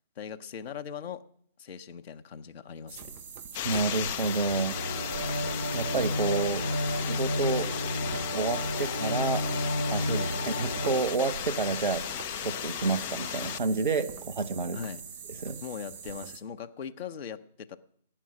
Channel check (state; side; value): inverted; both; correlation -0.39